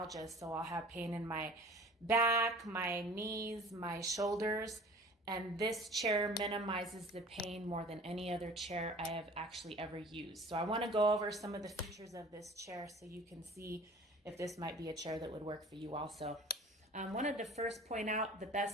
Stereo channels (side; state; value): both; normal; correlation 0.45